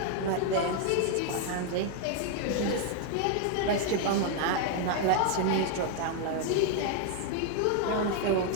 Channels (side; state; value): both; different; correlation 0.00